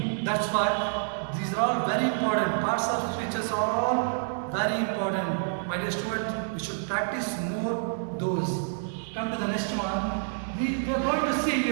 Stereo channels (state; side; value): silent; left; digital silence